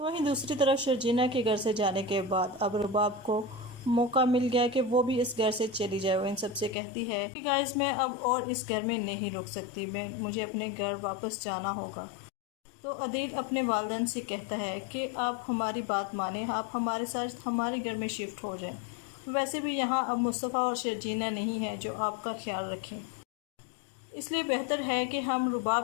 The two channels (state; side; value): drops out; right; at 6.8 s